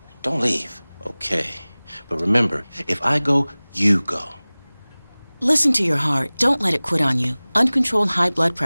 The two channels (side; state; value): both; inverted; correlation -1.00